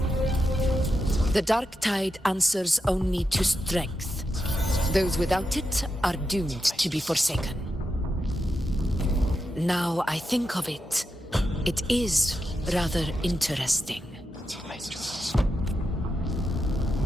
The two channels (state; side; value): normal; both; correlation 0.87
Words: The dark tide answers only to strength. Those without it are doomed to be forsaken. Now I think of it, it is rather interesting.